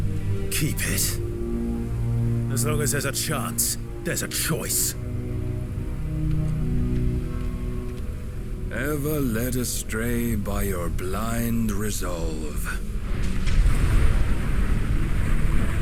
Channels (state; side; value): identical; both; correlation 1.00